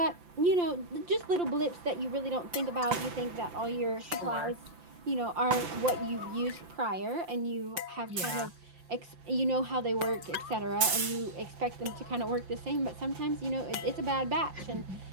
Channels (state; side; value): late; left; 5.9 ms